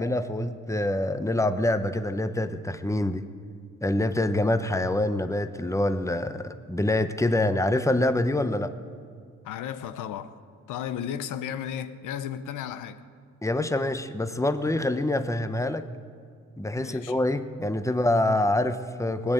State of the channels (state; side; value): normal; both; correlation 0.76